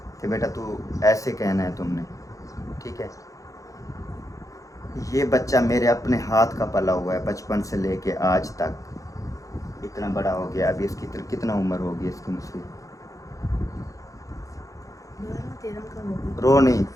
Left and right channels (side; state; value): right; late; 0.16 ms